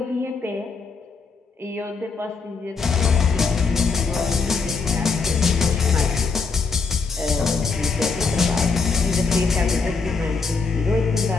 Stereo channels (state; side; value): quieter; right; 4.7 dB